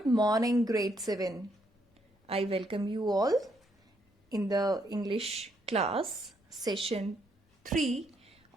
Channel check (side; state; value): both; normal; correlation 0.74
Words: morning, grade 7. I welcome you all in the English class, session 3